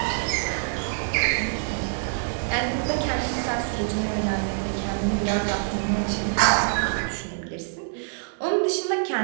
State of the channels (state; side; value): silent; left; digital silence